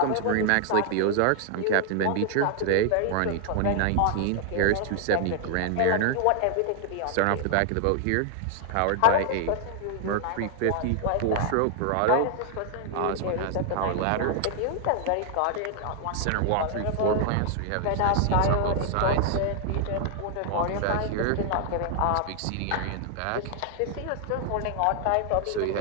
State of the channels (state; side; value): different; both; correlation 0.00